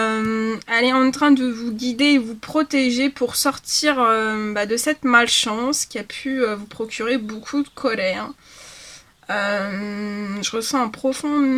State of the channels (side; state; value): both; identical; correlation 1.00